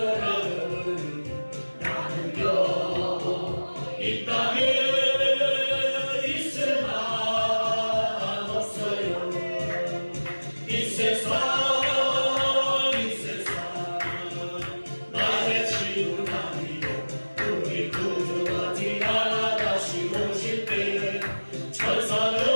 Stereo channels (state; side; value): inverted; both; correlation -1.00